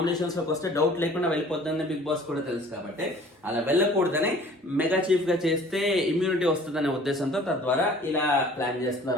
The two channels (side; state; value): both; normal; correlation 0.50